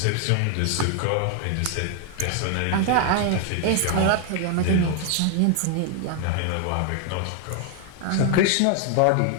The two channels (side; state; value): both; different; correlation 0.00